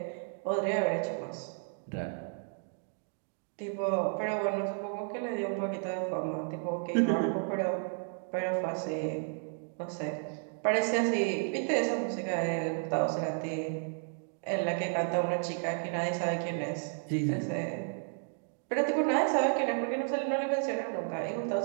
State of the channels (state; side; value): silent; left; 55 dB below the other